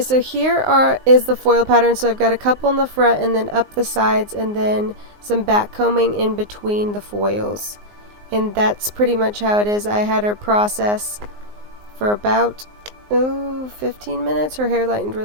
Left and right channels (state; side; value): late; left; 19 ms